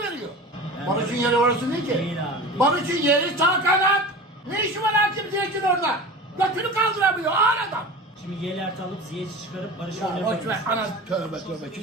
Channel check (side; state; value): both; normal; correlation 0.34